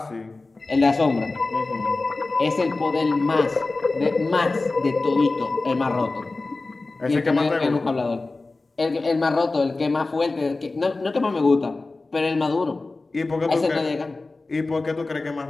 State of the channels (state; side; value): quieter; right; 3.4 dB